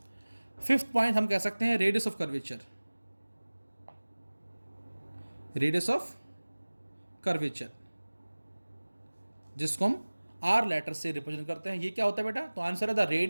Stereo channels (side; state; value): both; inverted; correlation -1.00